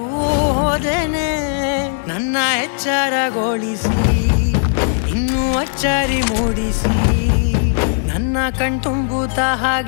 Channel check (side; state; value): right; silent; digital silence